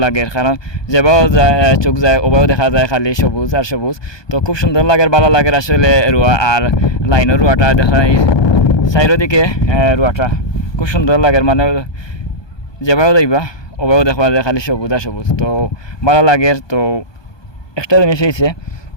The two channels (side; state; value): right; late; 1.2 ms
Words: লাগে, কারণ যেভাবে যায় চোখ যায় ওভাবেও দেখা যায় খালি সবুজ আর সবুজ। তো খুব সুন্দর লাগে, ভালো লাগে আসলে রোয়া। আর লাইনের রোয়াটা দেখা চারিদিকে রোয়াটা খুব সুন্দর লাগে, মানে যেভাবে যাইবা ওভাবেও দেখা যায় খালি সবুজ আর সবুজ, তো ভালো লাগে। তো একটা জিনিস হয়েছে,